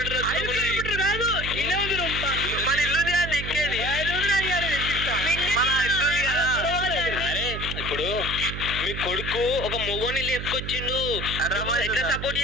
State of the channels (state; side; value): noise; right; hum, 6 dB below the sound